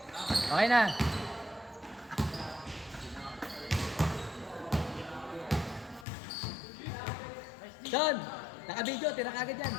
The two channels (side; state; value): right; drops out; at 6.1 s